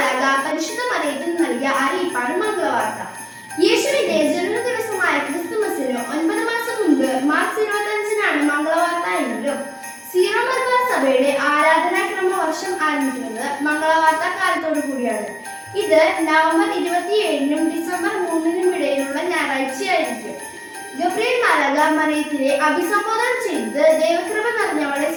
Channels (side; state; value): both; identical; correlation 1.00